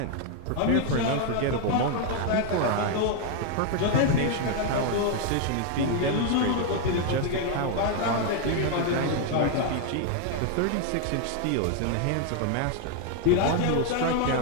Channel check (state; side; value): different; both; correlation 0.00